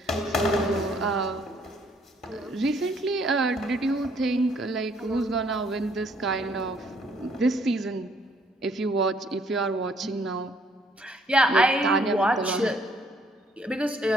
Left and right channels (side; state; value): both; normal; correlation 0.65